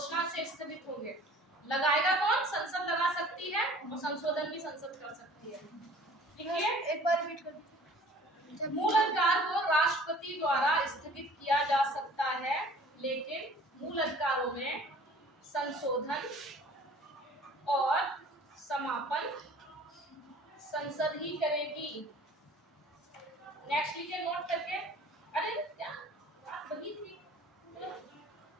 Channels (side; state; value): both; normal; correlation 0.49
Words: से स्थगित होंगे। लगाएगा कौन? संसद लगा सकती है, और संशोधन भी संसद कर सकती है। ठीक है, एक बार रिपीट कर दीजिए। मूल अधिकार को राष्ट्रपति द्वारा स्थगित किया जा सकता है, लेकिन मूल अधिकारों में संशोधन और समापन संसद ही करेगी। नेक्स्ट लिखिए नोट करके। अरे क्या बात वही थी,